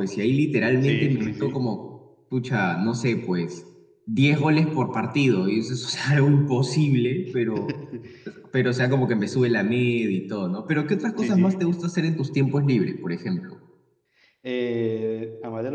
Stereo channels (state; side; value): identical; both; correlation 1.00